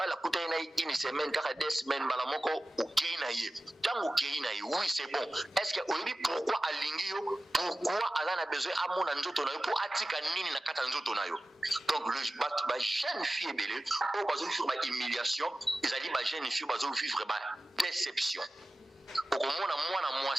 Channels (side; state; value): both; normal; correlation 0.95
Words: kuta ene une semaine kaka 2 semaines malamoko okei na ye tango okei na ye oui c'est bon est-ce que oyebi pourquoi alingi yo pourquoi ala a besoin amona nzoto na yo atika nini na kata nzoto na yo. Donc le ba jeune fille belé o bazo vivre ba humiliation ezali ba jeune fille bazo vivre ba déception okomona mwana